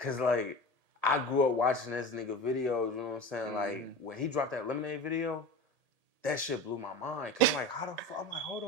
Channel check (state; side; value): late; left; 1.8 ms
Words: like I grew up watching this nigga videos. You know what I'm saying? Like when he dropped that Lemonade video, that shit blew my mind. Cause I'm like, how the fuck? I'm like, hold